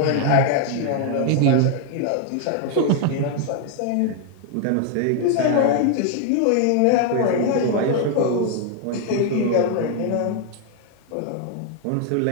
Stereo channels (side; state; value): both; different; correlation 0.00